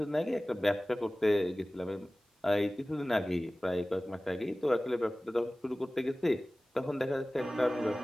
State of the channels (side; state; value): both; normal; correlation 0.98